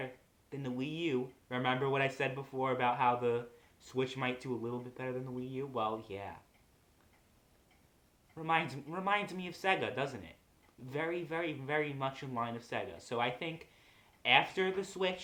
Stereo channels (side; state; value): both; identical; correlation 1.00